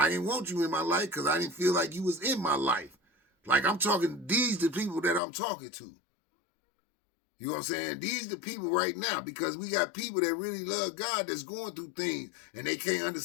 didn't want you in my life because I didn't feel like you was in my life. Like I'm talking, these the people that I'm talking to. You know what I'm saying? These the people right now, because we got people that really love God that's going through things and they can't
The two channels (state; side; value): drops out; right; at 5.2 s